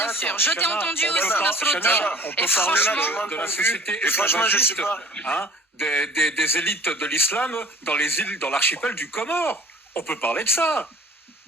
je t'ai entendu aussi, Nasruddin, et franchement... de la société esclavagiste, des élites de l'islam dans les îles, dans l'archipel du Comore. On peut parler de ça.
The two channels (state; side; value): normal; both; correlation 0.48